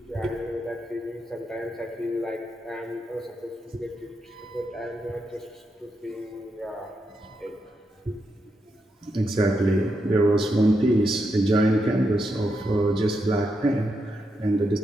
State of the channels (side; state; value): both; normal; correlation 0.83